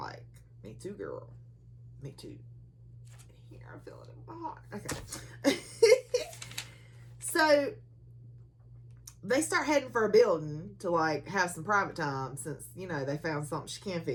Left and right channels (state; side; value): identical; both; correlation 1.00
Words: me too, girl. Me too. Here, I'm feeling it in my heart. Okay. So, they start heading for a building to, like, have some private time since, you know, they found something she can